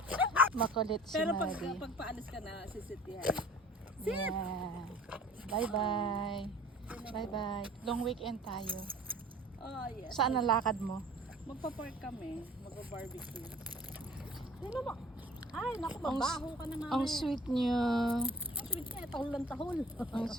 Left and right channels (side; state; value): both; normal; correlation 0.48